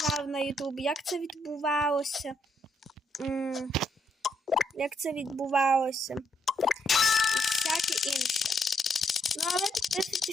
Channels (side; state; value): both; normal; correlation 0.75